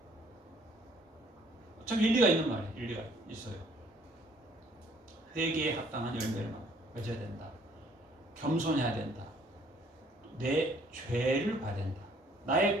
참 일리가 있는 말이에요. 일리가 있어요. 회개에 합당한 열매를 맺어야 된다. 겸손해야 된다. 내 죄를 봐야 된다.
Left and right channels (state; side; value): normal; both; correlation 0.61